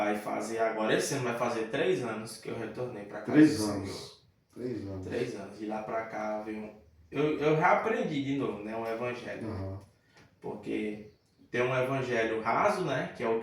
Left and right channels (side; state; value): both; identical; correlation 1.00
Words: fazer agora, esse ano vai fazer 3 anos que eu retornei para cá. 3 anos. 3 anos. 3 anos. De lá para cá veio eu reaprendi de novo, né, um evangelho. Porque tem um evangelho raso, né, que é o